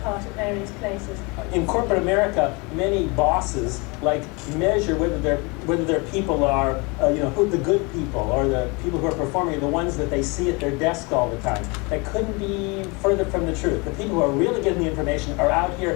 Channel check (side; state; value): right; quieter; 28.7 dB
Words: at various places. In corporate America, many bosses measure whether their people are, who the good people or the people who are performing, the ones that they see at their desk all the time. That couldn't be further from the truth. The people who are really getting the information are out